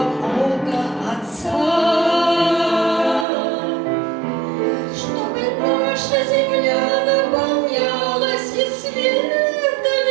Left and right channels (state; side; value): drops out; left; at 3.2 s